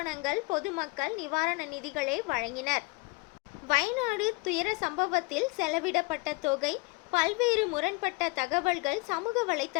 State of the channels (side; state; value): right; quieter; 26.8 dB